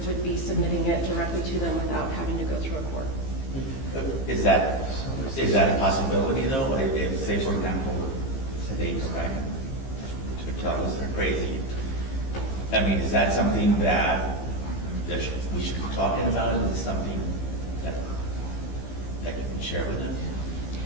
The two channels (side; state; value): right; late; 15 ms